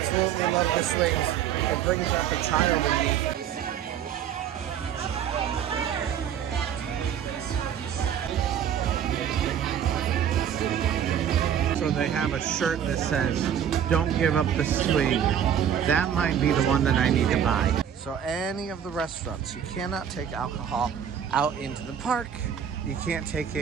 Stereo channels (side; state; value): left; quieter; 9.0 dB